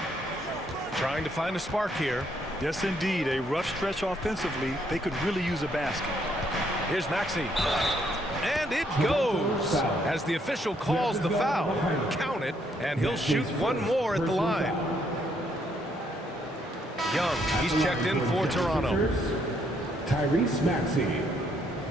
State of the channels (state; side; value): normal; both; correlation 0.71